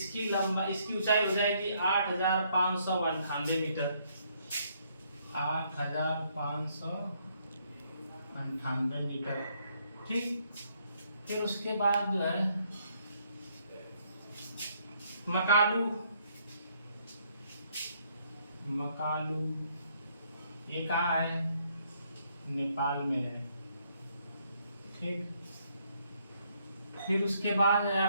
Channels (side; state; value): both; inverted; correlation -0.70